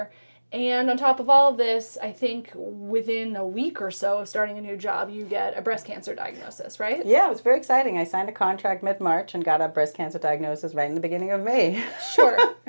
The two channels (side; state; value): both; inverted; correlation -1.00